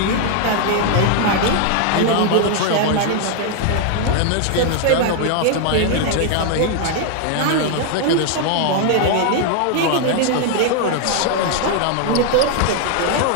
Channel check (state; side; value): different; both; correlation 0.00